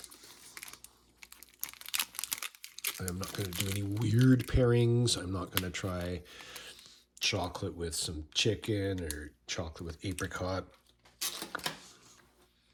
not going to do any weird pairings. I'm not going to try chocolate with some chicken or chocolate with apricot.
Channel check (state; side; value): identical; both; correlation 1.00